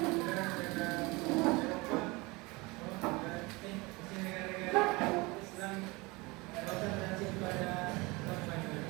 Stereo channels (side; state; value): left; quieter; 24.5 dB